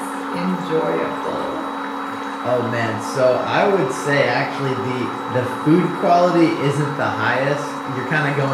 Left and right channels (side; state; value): both; identical; correlation 1.00